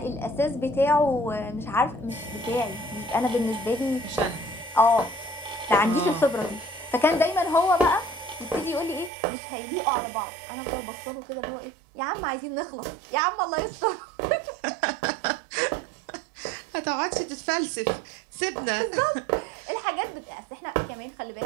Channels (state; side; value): drops out; left; at 9.1 s